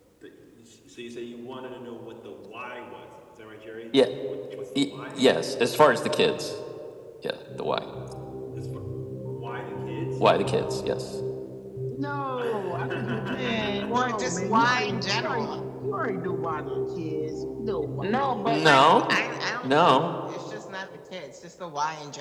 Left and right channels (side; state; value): both; identical; correlation 1.00